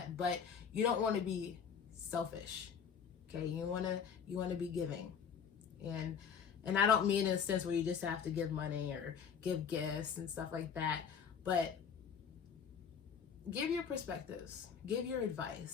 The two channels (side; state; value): right; quieter; 7.0 dB